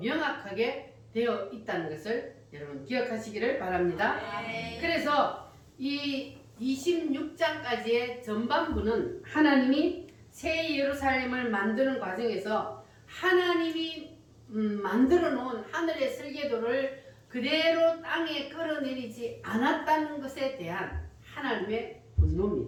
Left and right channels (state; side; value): identical; both; correlation 1.00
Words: 되어 있다는 것을 여러분 기억하시기를 바랍니다. 아멘. 그래서 이 26장까지의 전반부는 하나님이 새 예루살렘을 만드는 과정에서 하나님이 만들어 놓은 하늘의 설계도를 그대로 땅에 끌어내리지 않았다는 것에 대한 하나님의